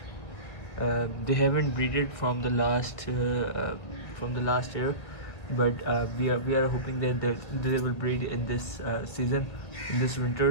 They haven't breeded from the last year, but we are hoping that they will breed in this season, in this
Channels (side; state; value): right; late; 2.0 ms